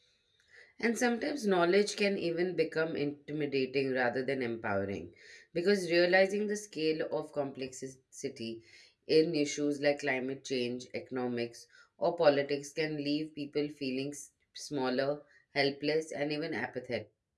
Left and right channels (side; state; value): both; identical; correlation 1.00